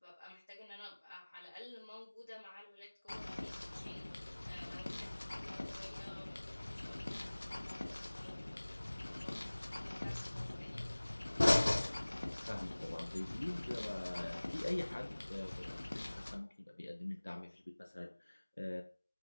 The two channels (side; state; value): both; inverted; correlation -1.00